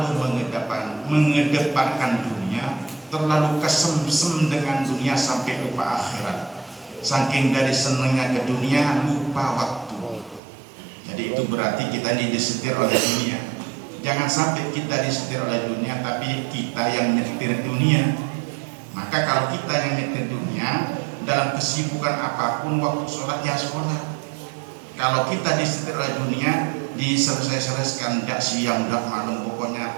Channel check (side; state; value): left; drops out; at 10.4 s